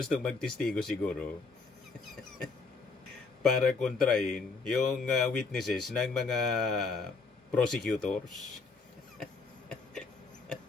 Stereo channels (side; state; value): right; quieter; 4.4 dB